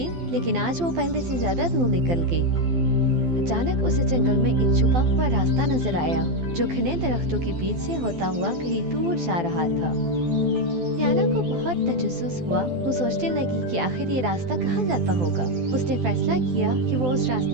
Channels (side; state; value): left; late; 12 ms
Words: लेकिन आज वो पहले से ज्यादा दूर निकल गई। अचानक उसे जंगल में एक छुपा हुआ रास्ता नजर आया, जो घने दरख्तों के बीच से होता हुआ कहीं दूर जा रहा था। लियाना को बहुत तजस्सुस हुआ। वो सोचने लगी कि आखिर ये रास्ता कहाँ जाता होगा। उसने फैसला किया कि वो उस